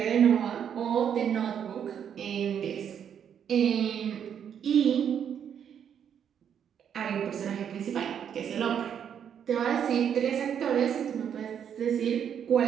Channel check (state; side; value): quieter; left; 8.5 dB